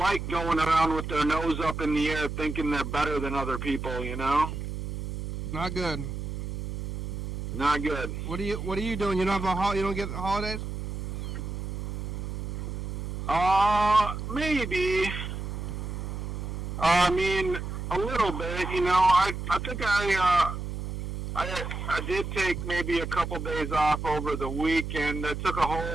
going around with their nose up in the air thinking they're better than other people, Not good. Not good. What are you doing? You don't get the holidays? Maybe. I mean, a little bit, I think I did take maybe a couple days off over the weekend. I took a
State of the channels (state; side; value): noise; right; hum, 5 dB below the sound